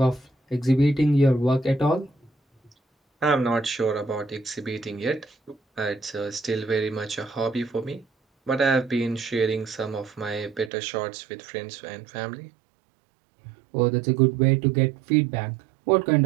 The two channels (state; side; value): drops out; left; at 10.7 s